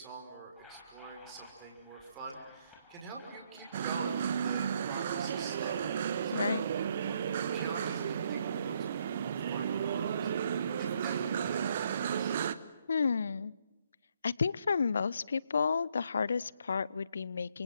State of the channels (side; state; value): both; inverted; correlation -0.72